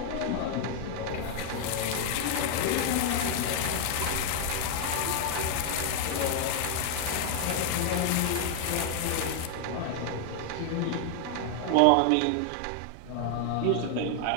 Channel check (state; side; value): different; both; correlation 0.00